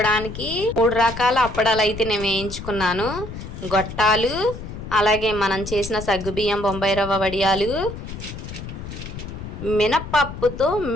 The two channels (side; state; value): left; noise; rumble, 10 dB below the sound